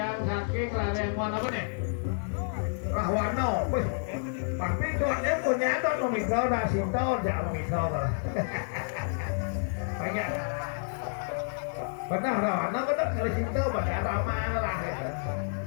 saking larian mana apa nih Rahwano tapi tuannya punya tuh nomikau dah sinto jangan nomikau lah banyak Benar dong, anak benar kalau cinta pada ramah lah ya.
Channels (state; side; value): silent; right; digital silence